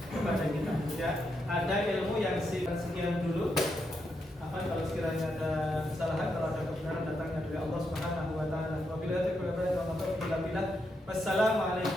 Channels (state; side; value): normal; both; correlation 0.82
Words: kita. Ya, ada ilmu yang sekian dulu. Apa kalau sekiranya ada kesalahan, kalau ada kebenaran datangnya dari Allah Subhanahu wa taala.